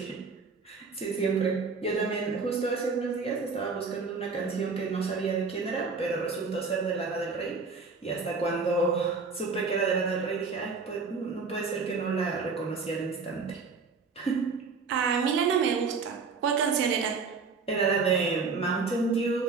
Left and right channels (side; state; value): left; quieter; 4.7 dB